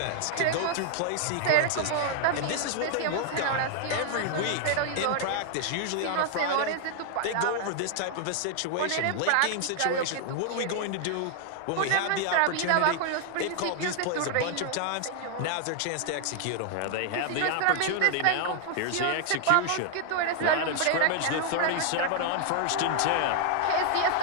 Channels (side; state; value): both; different; correlation 0.00